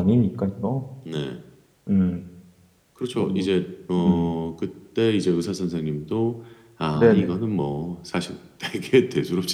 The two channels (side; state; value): both; identical; correlation 1.00